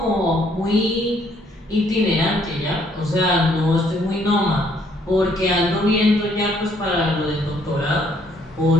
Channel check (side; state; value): both; normal; correlation 0.66